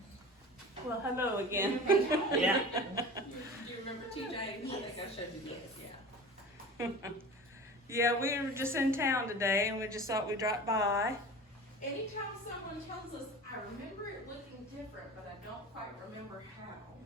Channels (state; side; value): normal; both; correlation 0.36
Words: Well, hello again. Yeah. Do you remember TJ? I think I showed you this. Yeah. Yeah, we were just in town today, and we just thought we'd drop by. Anytime someone tells us, I remember it looking different, but I don't quite remember how,